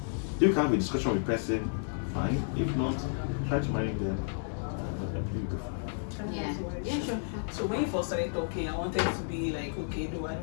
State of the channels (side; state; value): right; silent; digital silence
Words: If you can have a discussion with the person, fine. If not, try to manage them. Yeah. Yeah, sure. So when you first started talking, I wanted to be like, okay, no, I